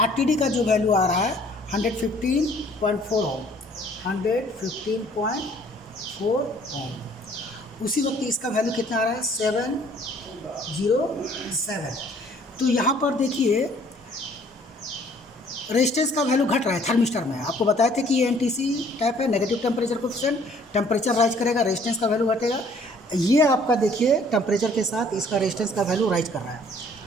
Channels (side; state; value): both; normal; correlation 0.58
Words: का जो वैल्यू आ रहा है 115.4 ओम, 115.4 ओम। उसी वक्त इसका वैल्यू कितना आ रहा है, 707। तो यहाँ पर देखिए रेजिस्टेंस का वैल्यू घट रहा है थर्मिस्टर में। आपको बताए थे कि ये एनटीसी टाइप है, negative temperature coefficient. Temperature rise करेगा, रेजिस्टेंस का वैल्यू घटेगा। ये आपका देखिए टेम्परेचर के साथ इसका रेजिस्टेंस का वैल्यू राइज कर रहा है